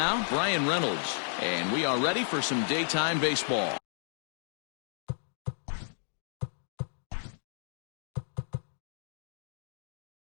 Brian Reynolds. And we are ready for some daytime baseball.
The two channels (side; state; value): right; silent; digital silence